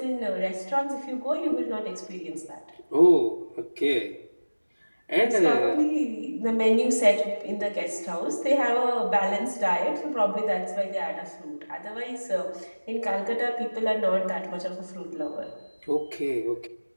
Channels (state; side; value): inverted; both; correlation -1.00